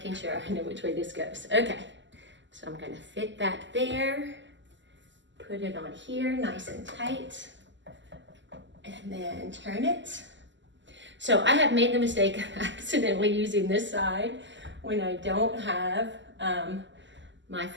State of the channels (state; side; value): late; left; 0.54 ms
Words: sure I know which way this goes. Okay, so I'm gonna fit that there, put it on here nice and tight, and then turn it. So I have made the mistake of accidentally using this side when I don't have my